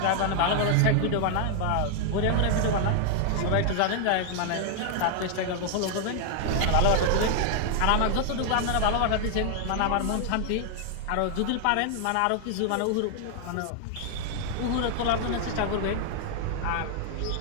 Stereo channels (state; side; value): different; both; correlation 0.00